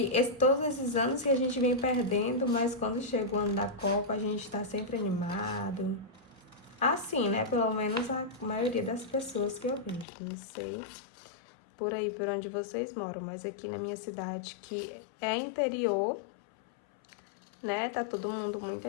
todos esses anos que a gente vem perdendo, mas quando chega o ano da Copa, a gente tá sempre animado. Assim, né? Pelo menos a maioria das pessoas que eu vejo. Não sei por aí, por onde vocês moram, mas aqui na minha cidade, que é interior, né? Tá todo mundo muito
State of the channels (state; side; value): drops out; right; at 10.1 s